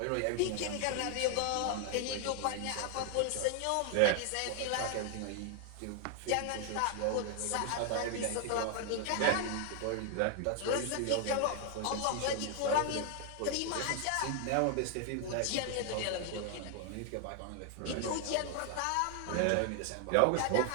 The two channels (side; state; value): both; different; correlation 0.00